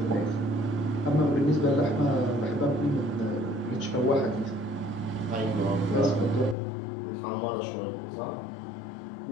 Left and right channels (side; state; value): right; drops out; at 6.6 s